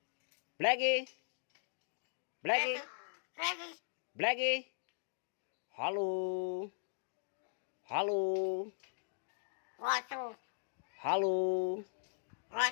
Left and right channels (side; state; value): right; silent; digital silence